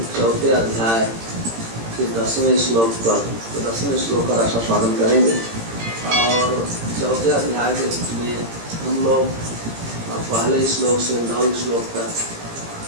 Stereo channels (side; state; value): left; late; 18 ms